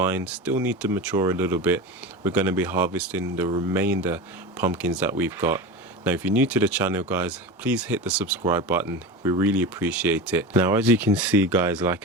still need to mature a little bit, we're going to be harvesting the remainder pumpkins that we've got. Now if you're new to the channel guys, please hit the subscribe button, we really appreciate it. Now as you can see guys,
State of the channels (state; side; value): normal; both; correlation 0.27